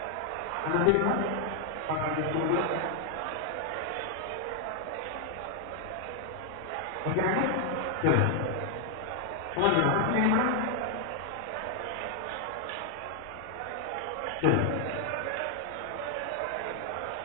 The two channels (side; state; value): both; normal; correlation 0.00